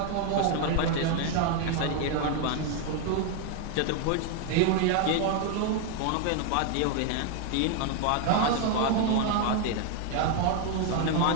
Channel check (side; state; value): both; different; correlation 0.01